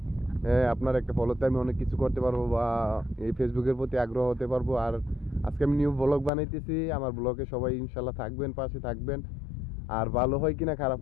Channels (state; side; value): drops out; right; at 6.3 s